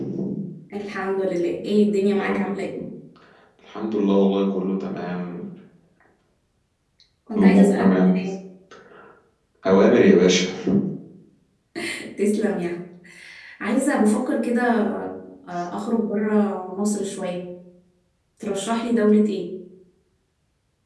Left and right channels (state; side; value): identical; both; correlation 1.00